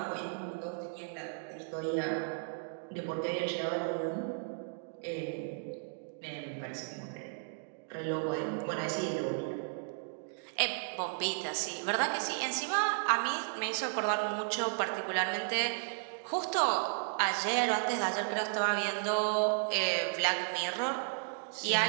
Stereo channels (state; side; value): silent; left; digital silence